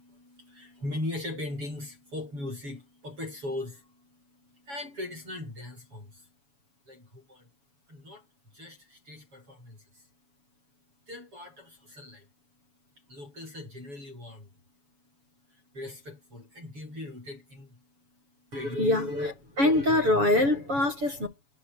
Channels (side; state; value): left; late; 7.1 ms